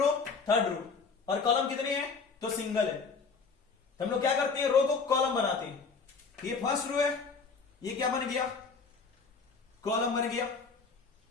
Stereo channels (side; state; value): right; quieter; 4.9 dB